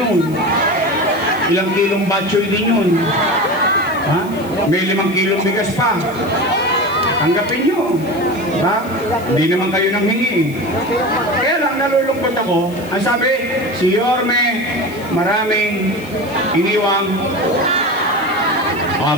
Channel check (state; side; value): noise; left; hiss, 21 dB below the sound